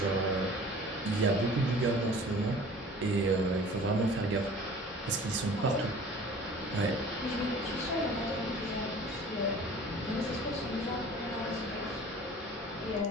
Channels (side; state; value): both; normal; correlation 0.45